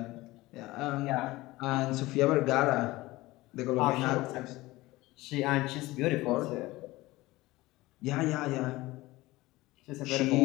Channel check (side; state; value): right; quieter; 19.3 dB